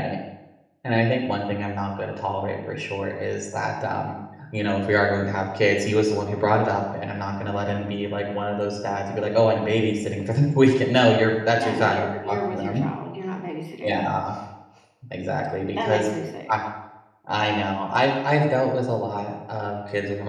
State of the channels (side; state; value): both; identical; correlation 1.00